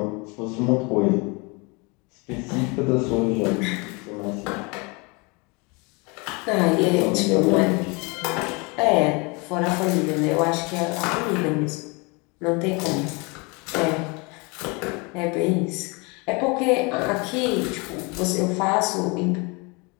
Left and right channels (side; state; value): right; quieter; 29.2 dB